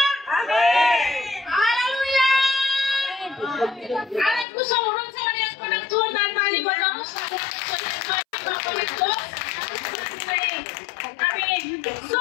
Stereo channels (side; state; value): right; drops out; at 4.5 s